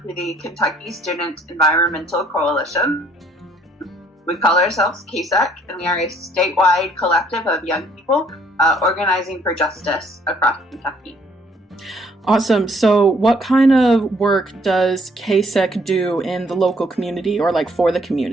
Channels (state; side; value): normal; both; correlation 0.63